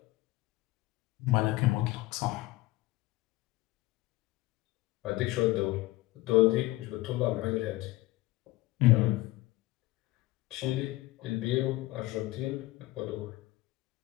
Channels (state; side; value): quieter; right; 18.7 dB